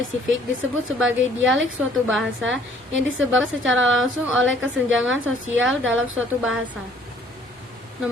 disebut sebagai dialek suatu bahasa yang disebabkan secara langsung oleh kesenjangan sosial dalam suatu bahasa.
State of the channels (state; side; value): normal; both; correlation 0.58